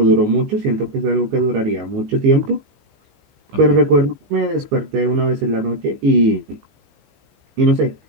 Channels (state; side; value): late; left; 15 ms